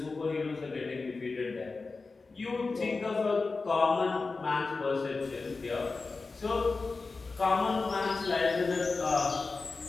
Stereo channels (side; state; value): right; quieter; 4.0 dB